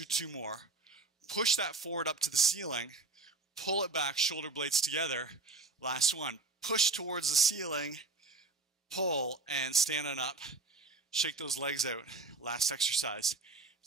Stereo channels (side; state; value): left; quieter; 3.7 dB